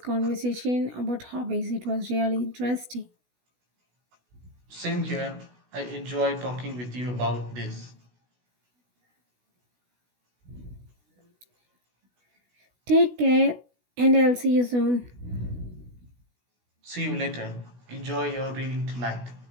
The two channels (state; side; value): late; left; 16 ms